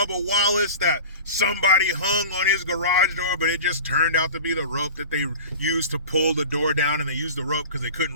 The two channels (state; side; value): inverted; both; correlation -0.34